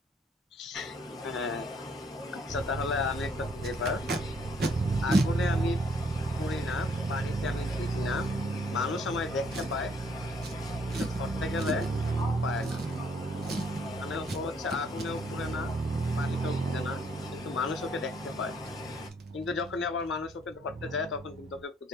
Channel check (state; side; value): normal; both; correlation 0.66